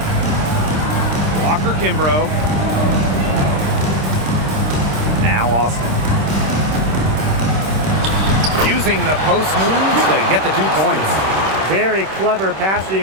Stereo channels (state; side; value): late; left; 26 ms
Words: Walker Kimbrough. Now Austin. Using the post moves to get the 2 points. Very clever